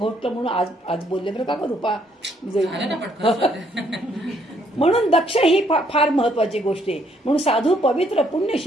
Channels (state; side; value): normal; both; correlation 0.69